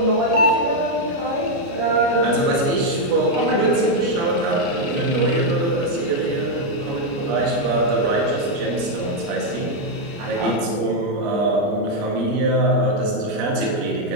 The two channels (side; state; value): left; late; 29 ms